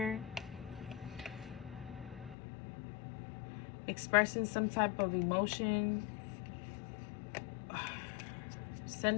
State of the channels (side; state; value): right; drops out; at 2.4 s